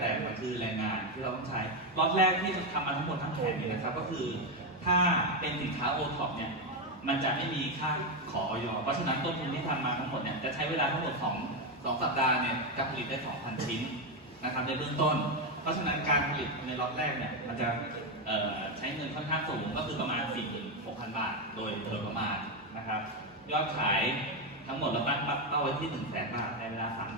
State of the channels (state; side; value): normal; both; correlation 0.07